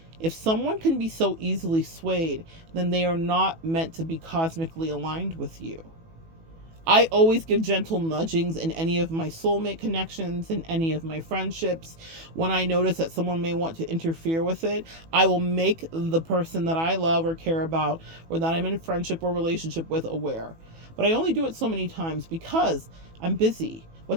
If someone can be so easily swayed, then they are not meant to be cosmically aligned with you. I always give gentle nudgings in any of my soulmate connections, in any of my friendships. When I notice that someone may want to interfere with it, I will make the person that I love or care about, or that I'm in friendship or relationship with, aware. But I only do it so many times because I'm busy. What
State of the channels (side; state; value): left; late; 18 ms